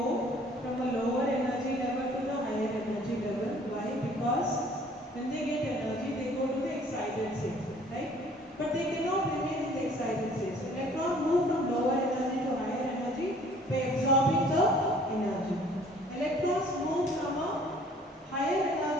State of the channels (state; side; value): normal; both; correlation 0.55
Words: from a lower energy level to the higher energy level. Why? Because when they get energy, they go to the excited state, right? But they cannot remain in the excited state. So electrons move from lower energy to higher energy by absorbing the energy. Electrons move from a higher